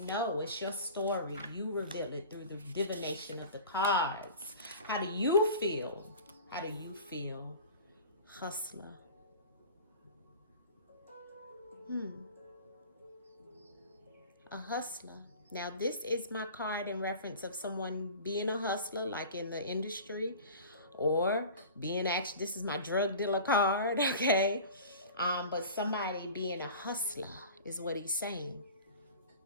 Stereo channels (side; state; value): both; inverted; correlation -0.39